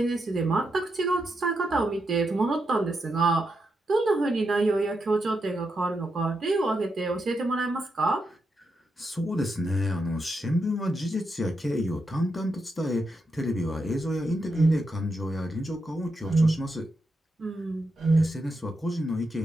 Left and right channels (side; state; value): both; normal; correlation 0.84